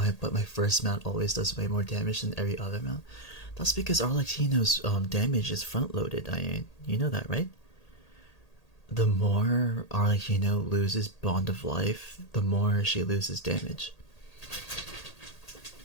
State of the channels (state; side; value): late; right; 1.8 ms